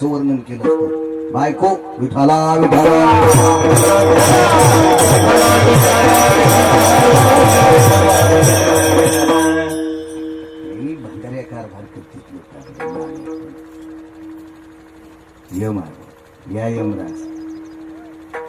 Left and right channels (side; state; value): both; identical; correlation 1.00